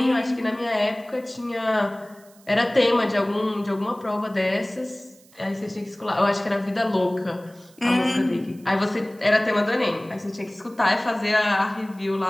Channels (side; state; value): right; noise; hiss, 27 dB below the sound